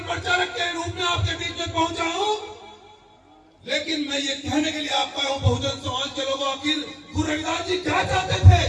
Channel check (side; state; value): both; identical; correlation 1.00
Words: प्रचारक के रूप में आपके बीच में पहुंचा हूं। लेकिन मैं ये कहने के लिए आपका हूं, बहुजन समाज के लोगों, आखिर गुरु रविदास जी क्या चाहते